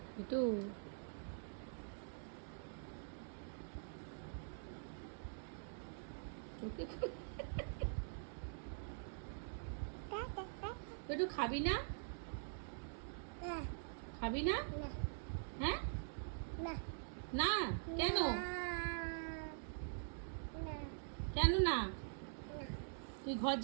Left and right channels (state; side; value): silent; left; digital silence